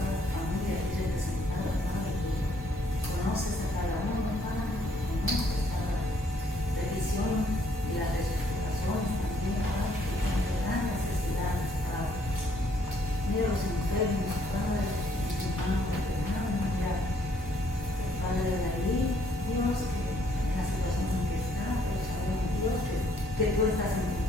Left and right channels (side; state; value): both; normal; correlation 0.67